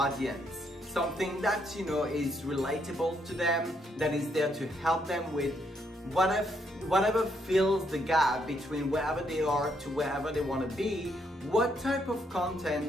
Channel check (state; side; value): normal; both; correlation 0.74